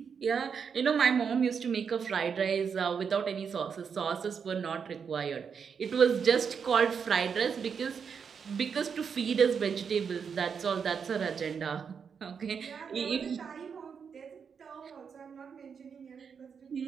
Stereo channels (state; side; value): quieter; left; 6.5 dB